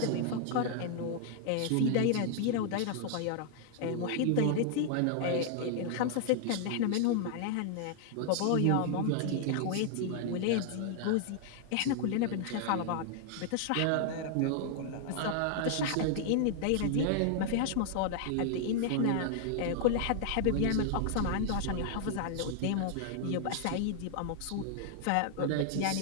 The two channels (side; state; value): both; different; correlation 0.00